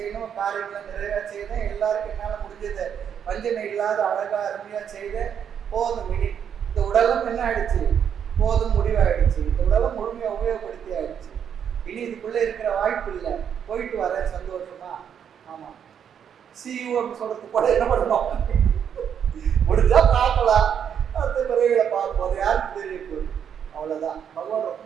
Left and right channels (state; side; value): quieter; left; 8.3 dB